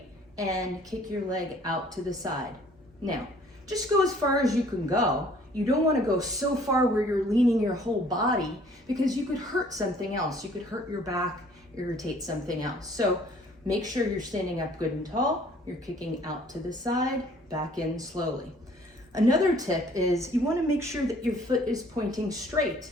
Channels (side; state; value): both; normal; correlation 0.57